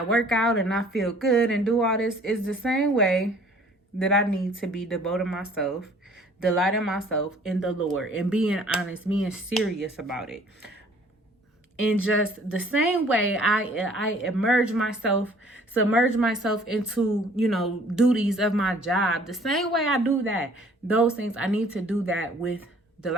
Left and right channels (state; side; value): normal; both; correlation 0.55